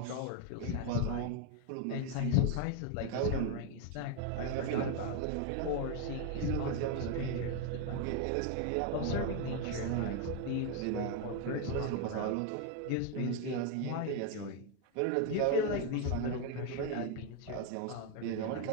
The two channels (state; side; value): different; both; correlation 0.01